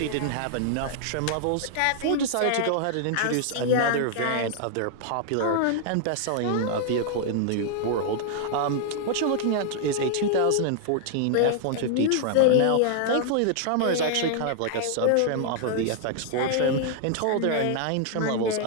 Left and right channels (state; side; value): different; both; correlation -0.01